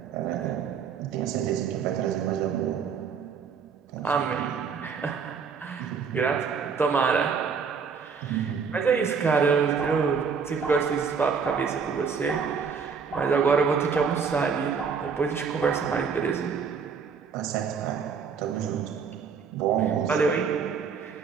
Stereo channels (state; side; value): quieter; left; 6.0 dB